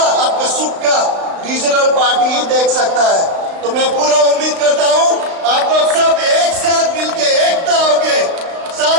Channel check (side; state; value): left; late; 35 ms